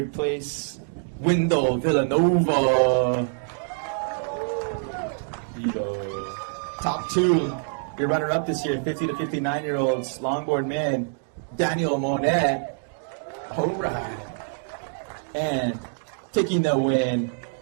place, Wendell Villanova. Top 2, your runner-up this year, 50 to 59-year-olds, longboard man, Daniel Monet. All right. And taking the win,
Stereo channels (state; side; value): silent; left; 61 dB below the other